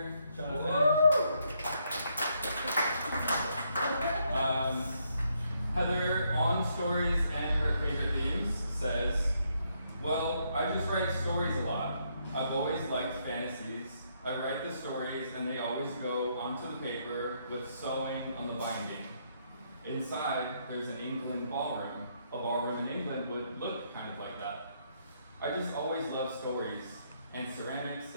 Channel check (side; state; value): both; inverted; correlation -0.74